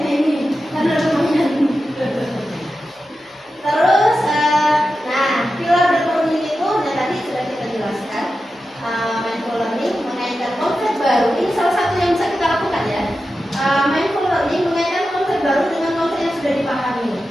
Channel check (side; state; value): both; normal; correlation 0.91